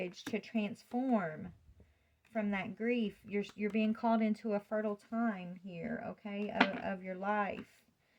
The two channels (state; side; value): identical; both; correlation 1.00